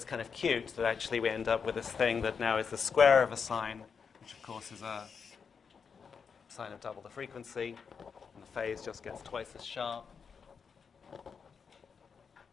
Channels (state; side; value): quieter; right; 6.1 dB